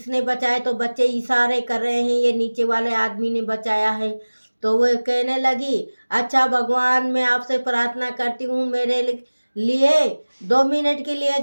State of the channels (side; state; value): both; inverted; correlation -1.00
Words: बचाए? तो बच्चे इशारे कर रहे हैं, ये नीचे वाले आदमी ने बचाया है। तो वो कहने लगी, अच्छा भगवान, मैं आपसे प्रार्थना करती हूँ, मेरे लिए 2 मिनट के लिए